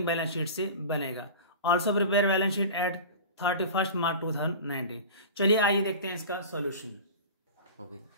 बैलेंस शीट से बनेगा। Also prepare balance sheet at 31st March 2019। चलिए आइए देखते हैं इसका solution. Okay,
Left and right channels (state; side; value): inverted; both; correlation -0.34